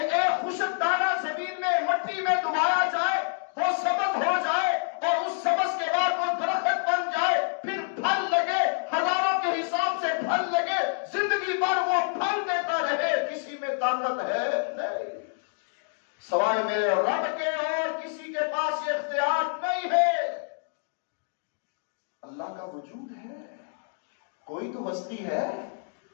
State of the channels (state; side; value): silent; right; digital silence